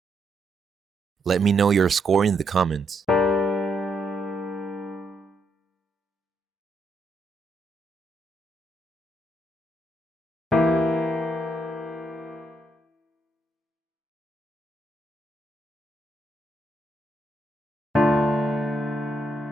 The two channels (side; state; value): both; normal; correlation 0.77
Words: Let me know your score in the comments.